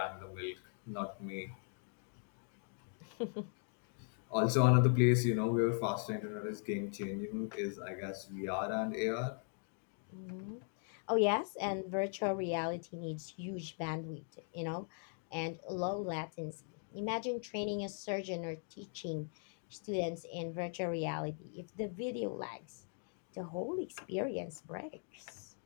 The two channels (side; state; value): right; silent; 51 dB below the other